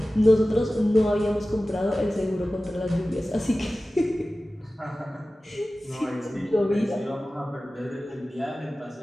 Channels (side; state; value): both; normal; correlation 0.96